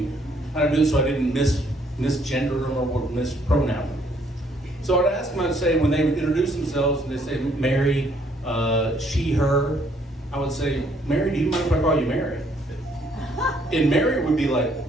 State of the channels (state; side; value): normal; both; correlation 0.67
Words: how to do it so I didn't misgender them or mispronoun them. So I'd ask them, I'd say, when they would introduce themselves and they say Mary, she, her, I would say, Mary, do you mind if I call you Mary? And Mary would be like,